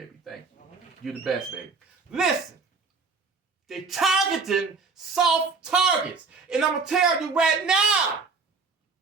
Thank you. You're the best, baby. Listen, they targeting soft targets. And I'm going to tell you right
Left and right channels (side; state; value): left; quieter; 4.6 dB